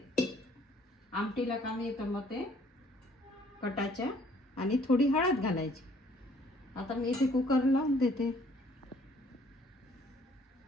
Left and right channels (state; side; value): normal; both; correlation 0.60